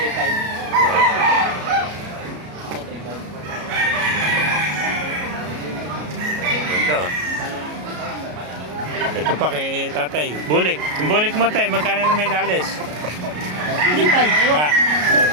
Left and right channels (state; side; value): late; left; 33 ms